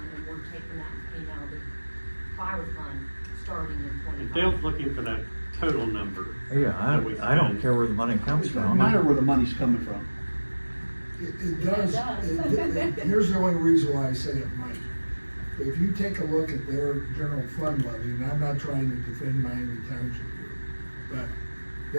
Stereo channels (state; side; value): inverted; both; correlation -1.00